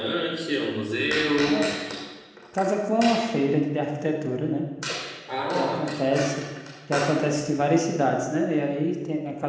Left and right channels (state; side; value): identical; both; correlation 1.00